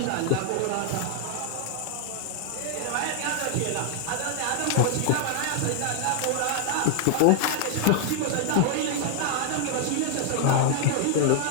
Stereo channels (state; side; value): different; both; correlation -0.01